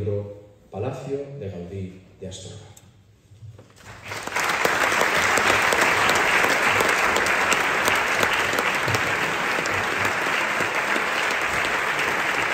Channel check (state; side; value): identical; both; correlation 1.00